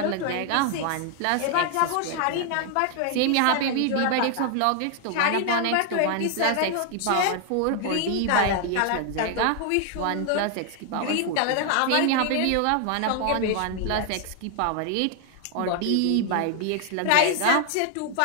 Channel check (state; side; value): different; both; correlation 0.00